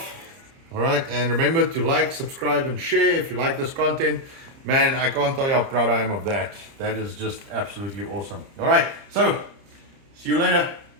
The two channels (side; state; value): left; late; 30 ms